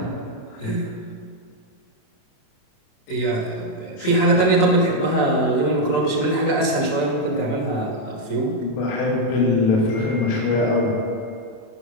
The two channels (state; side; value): late; right; 27 ms